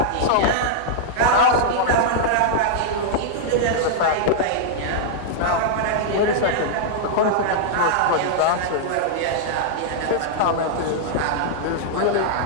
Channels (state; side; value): different; both; correlation -0.01